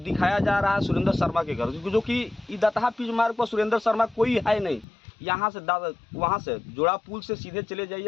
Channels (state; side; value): drops out; right; at 4.9 s